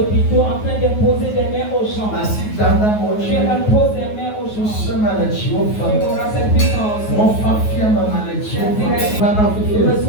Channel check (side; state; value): right; late; 9.4 ms